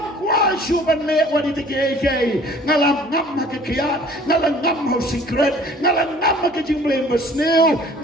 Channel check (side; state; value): both; normal; correlation 0.51